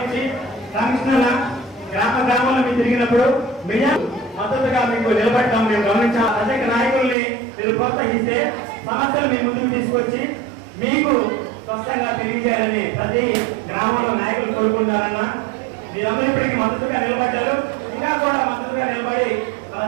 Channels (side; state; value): left; drops out; at 7.2 s